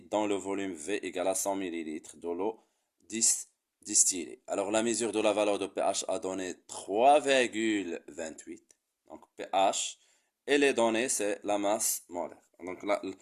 dans le volume V égale à 100 ml de l'eau distillée. Alors la mesure de la valeur de pH a donné 3,28. Donc pH et les données c'est la masse molaire. Donc là,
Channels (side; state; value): both; identical; correlation 1.00